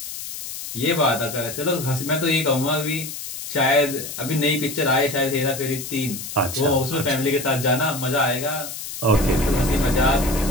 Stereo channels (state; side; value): noise; left; hiss, 9 dB below the sound